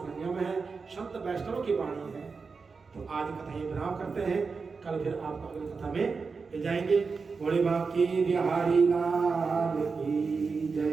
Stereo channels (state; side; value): quieter; left; 4.8 dB